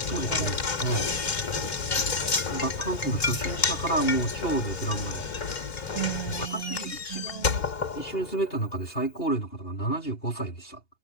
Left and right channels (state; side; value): late; right; 3.0 ms